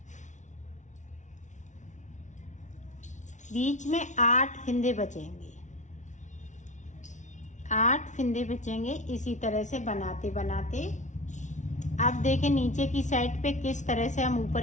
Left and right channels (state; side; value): late; right; 0.36 ms